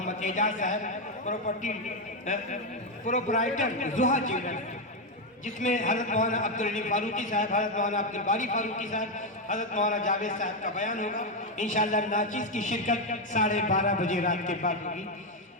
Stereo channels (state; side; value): normal; both; correlation 0.06